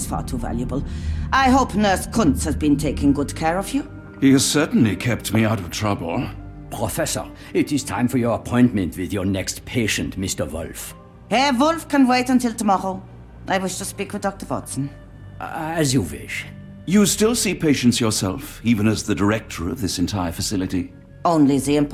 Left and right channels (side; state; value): both; identical; correlation 1.00